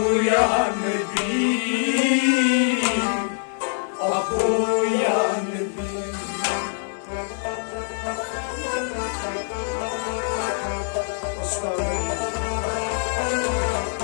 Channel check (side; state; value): right; silent; 58 dB below the other